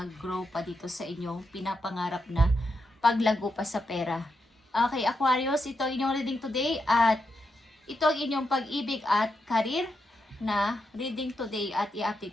pa dito sa inyong pinapangarap na paglago pa sa pera. Okay, Aquarius, ito ang inyong reading today at ito ang inyong pag-ibig at career na reading today at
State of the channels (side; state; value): both; normal; correlation 0.84